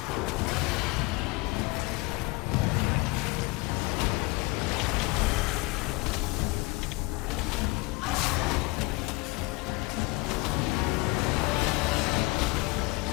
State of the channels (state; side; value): quieter; right; 24.2 dB